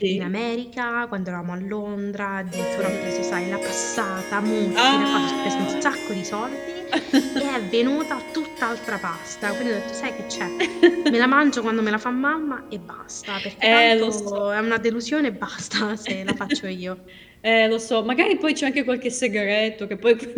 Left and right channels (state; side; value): identical; both; correlation 1.00